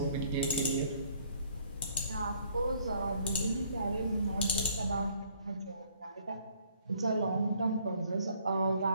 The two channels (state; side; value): inverted; both; correlation -0.63